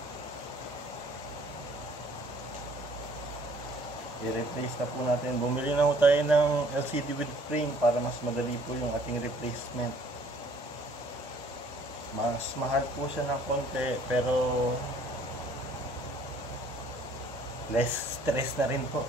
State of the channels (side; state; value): both; normal; correlation 0.58